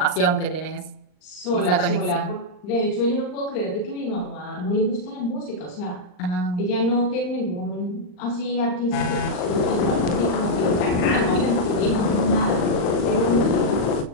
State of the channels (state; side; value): late; right; 39 ms